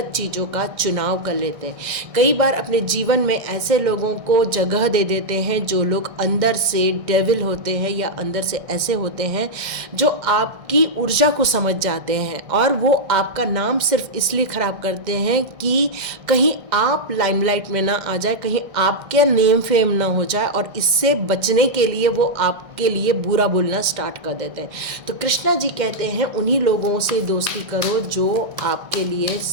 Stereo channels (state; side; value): late; left; 1.6 ms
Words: चीज़ों का चुनाव कर लेते हैं, कई बार अपने जीवन में ऐसे लोगों को जगह दे देते हैं जो लोग अंदर से डेविल होते हैं या अंदर से ऐसे होते हैं जो आपकी ऊर्जा को समझ जाते हैं और वो आपका नाम सिर्फ इसलिए ख़राब करते हैं कि कहीं आप लाइमलाइट में ना आ जाए, कहीं आपके नेम फेम ना हो जाए, और इससे बचने के लिए वो आपके लिए बुरा बोलना स्टार्ट कर देते हैं। तो कृष्णा जी कहते हैं उन्हीं लोगों से दोस्ती करो जो आपके लिए